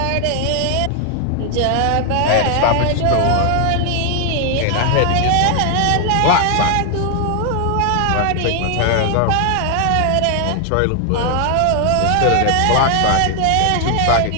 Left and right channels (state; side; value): different; both; correlation 0.00